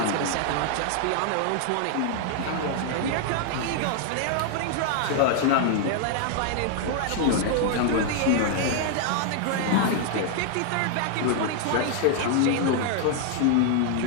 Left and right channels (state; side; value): different; both; correlation 0.00